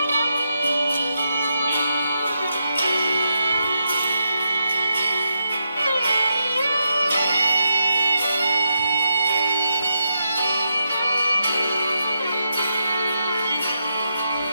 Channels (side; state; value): both; inverted; correlation -0.83